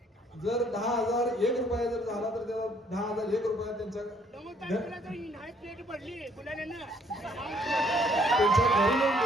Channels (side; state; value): both; normal; correlation 0.64